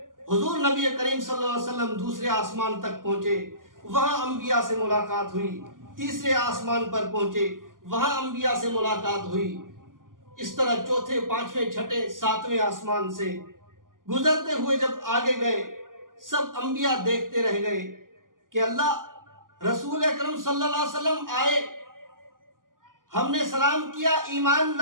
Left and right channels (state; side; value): late; left; 0.90 ms